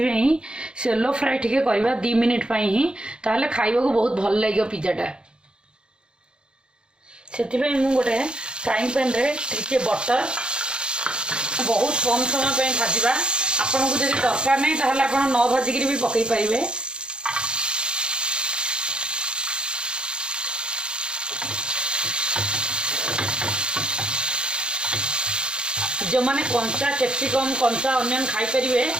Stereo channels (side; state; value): left; late; 0.051 ms